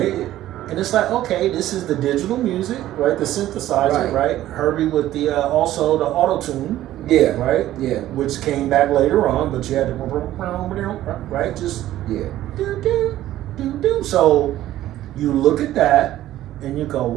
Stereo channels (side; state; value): left; quieter; 13.9 dB